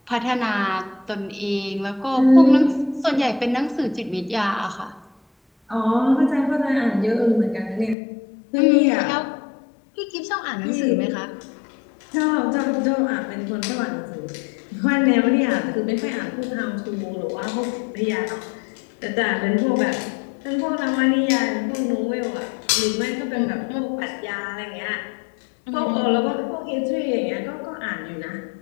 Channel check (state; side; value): drops out; right; at 8.0 s